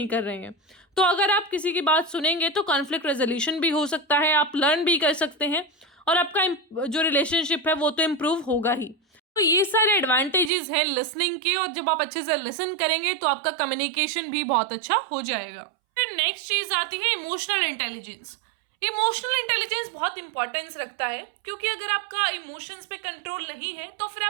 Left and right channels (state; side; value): drops out; left; at 10.5 s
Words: कर रहे हैं। तो अगर आप किसी की बात सुनेंगे तो कॉन्फ्लिक्ट रेजोल्यूशन भी हो सकता है, आप लर्न भी कर सकते हैं, और आपका जो रिलेशनशिप है वो तो इम्प्रूव होगा ही। तो ये सारे एडवांटेजेस हैं लिसनिंग के, और जब आप अच्छे से लिसन करेंगे तो आपका कम्युनिकेशन भी बहुत अच्छा हो जाएगा। फिर नेक्स्ट चीज़ आती है इमोशनल इंटेलिजेंस। इमोशनल इंटेलिजेंस बहुत इंपॉर्टेंस रखता है, क्योंकि अगर आपका इमोशंस पे कंट्रोल नहीं है तो फिर